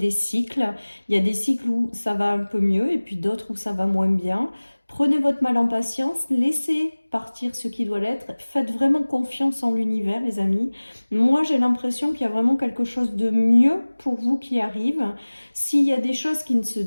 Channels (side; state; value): both; inverted; correlation -1.00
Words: cycles. Il y a des cycles où ça va un peu mieux et puis d'autres où ça va moins bien. Prenez votre mal en patience, laissez partir ce qui doit l'être. Faites vraiment confiance en l'univers, les amis. Moi, j'ai l'impression qu'il y a vraiment quelque chose de mieux pour vous qui arrive. S'il y a des choses qui ne se